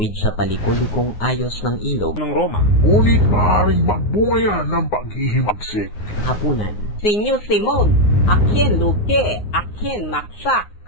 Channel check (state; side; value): late; right; 9.6 ms